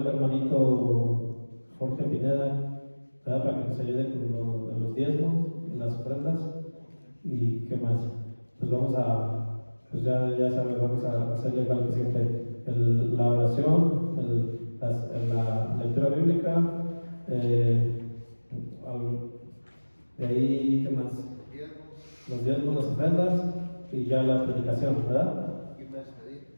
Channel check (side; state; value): both; inverted; correlation -1.00